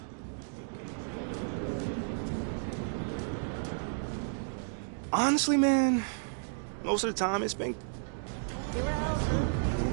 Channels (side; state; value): left; silent; digital silence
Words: Honestly, man, most of the time it's been...